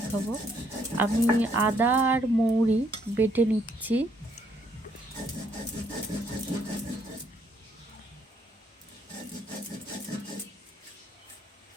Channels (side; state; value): both; normal; correlation 0.69